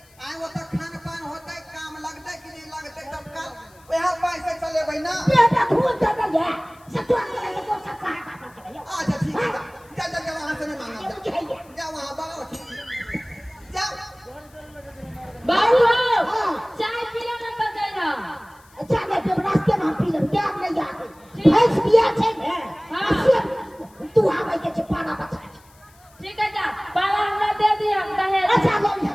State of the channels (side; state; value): left; noise; hiss, 29 dB below the sound